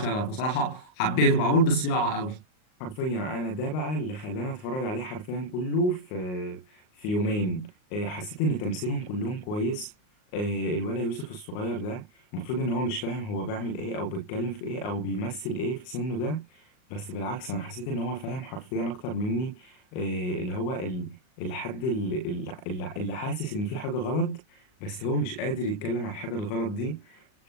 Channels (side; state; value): right; late; 38 ms